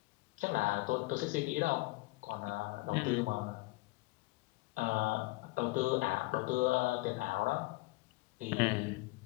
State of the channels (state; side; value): quieter; right; 22.4 dB